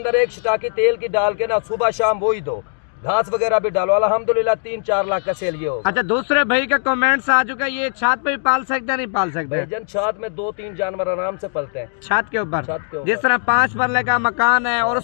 एक शिटाकी तेल की डाल के ना सुबह शाम वही दो, घास वगैरह भी डालो। अल्हम्दुलिल्लाह 3-4 लाख का सेल ये हो। अच्छा दूसरे भाई का कमेंट्स आ चुका है, ये छत पे भी पाल सकते हैं नहीं पाल सकते? भाईजान छत में 2-3 जानवर आराम से पलते हैं। छत के ऊपर? छत के ऊपर। जिस तरह 5 मरले का मकान है और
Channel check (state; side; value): silent; right; 64 dB below the other